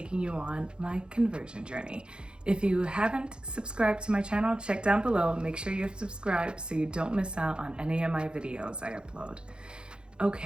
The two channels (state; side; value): late; left; 0.051 ms